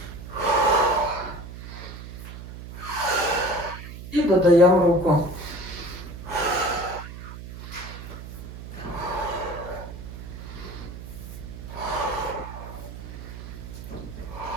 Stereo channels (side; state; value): right; noise; hum, 11 dB below the sound